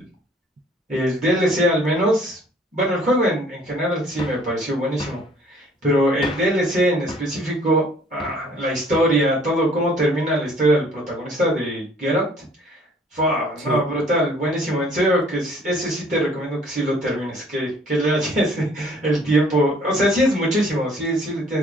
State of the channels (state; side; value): normal; both; correlation 0.57